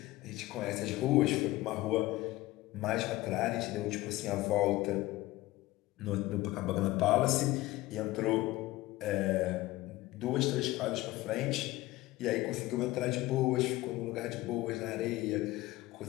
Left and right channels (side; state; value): right; quieter; 18.2 dB